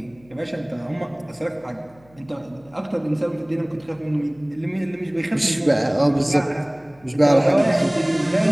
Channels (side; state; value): left; noise; hum, 29 dB below the sound